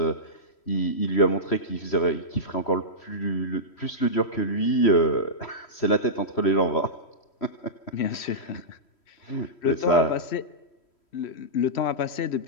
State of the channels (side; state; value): right; late; 3.1 ms